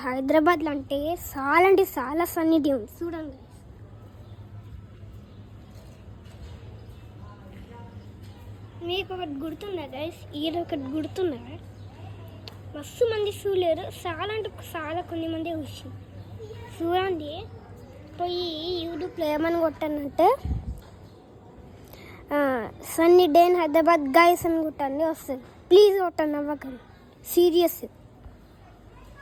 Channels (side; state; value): both; identical; correlation 1.00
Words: హైదరాబాద్లో అంటే చాలా సన్నీ డే ఉంది చూడండి. మీకు ఒకటి గుర్తుందా గైస్? ఈరోజు ఒకటి గుర్తుందా? మస్తు మంది చూడలేరు, చాలా కొన్ని మంది వచ్చి చూడండి. పోయి యూట్యూబ్లో ఏమని కొట్టానంటే sunny day in Hyderabad guys అని కొట్టండి, వస్తుంది. ప్లీజ్ కొట్టండి, అవ్వకండి, సీరియస్.